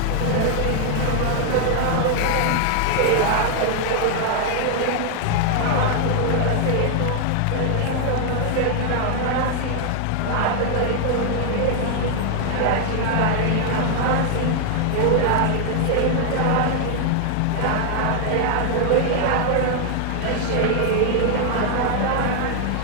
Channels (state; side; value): different; both; correlation 0.00